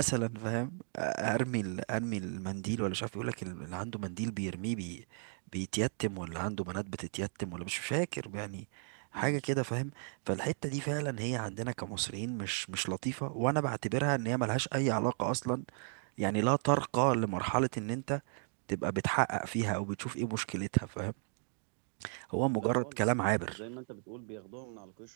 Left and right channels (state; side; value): silent; left; 54 dB below the other